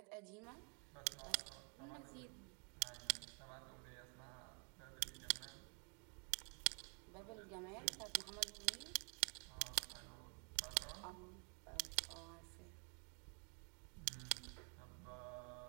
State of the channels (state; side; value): quieter; left; 37.6 dB